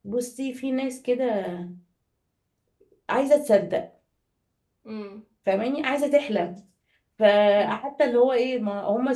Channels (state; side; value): identical; both; correlation 1.00